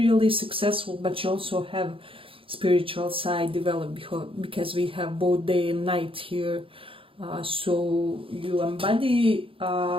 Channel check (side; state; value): left; late; 0.26 ms